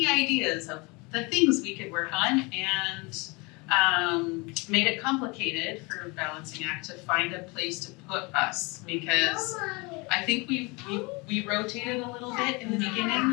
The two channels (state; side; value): quieter; right; 27.4 dB